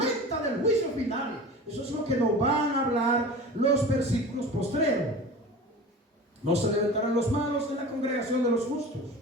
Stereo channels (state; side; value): normal; both; correlation 0.35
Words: del juicio final. Eso es lo que nos van a hablar los versículos postreros. No se levantarán los malos en la congregación de los justos,